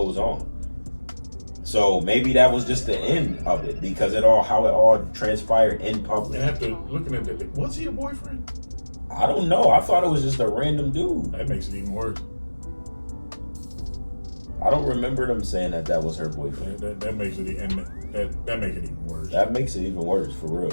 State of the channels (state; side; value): inverted; both; correlation -1.00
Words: on. So maybe that was just the end of it, because how it all transpired in public. And after looking at that, was he a boyfriend? I don't know. I thought it was just a random dude. That makes it even worse. I don't remember them saying that was her boyfriend. That makes it, and that makes it even worse. That makes it even worse, for real.